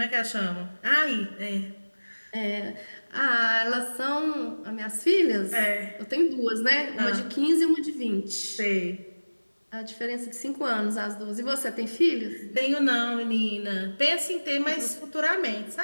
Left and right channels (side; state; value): both; inverted; correlation -1.00